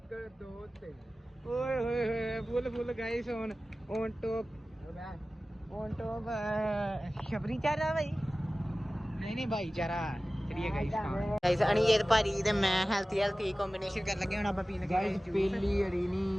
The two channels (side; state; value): both; normal; correlation 0.96